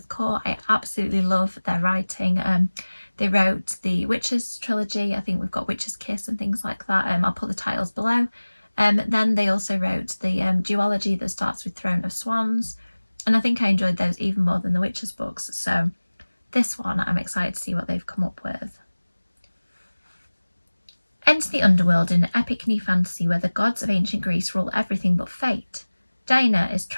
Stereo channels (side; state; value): both; inverted; correlation -1.00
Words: Kaur. I absolutely love their writing. They wrote the Witches trilogy. I think we've got Witch's Kiss and things like that. I'll put the titles below. Then they also wrote the duology that starts with Throne of Swans, and I think I enjoyed those even more than the Witches books. So this one, I'm excited to see what they've come up with. Enter the underworld in an epic new fantasy where the gods of ancient Greece rule everything but fate. Diana is